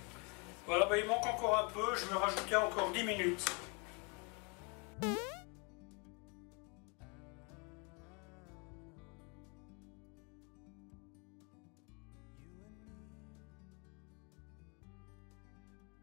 Voilà, bah, il manque encore un peu, je vais rajouter encore 10 minutes.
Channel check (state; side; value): quieter; right; 32.8 dB